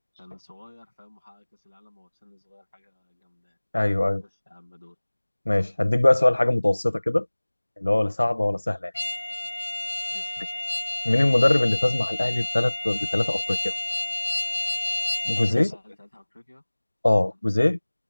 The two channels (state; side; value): inverted; both; correlation -1.00